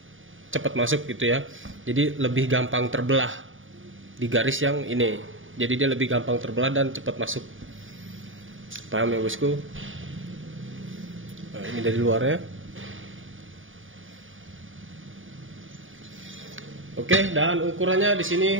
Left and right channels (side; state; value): left; late; 0.57 ms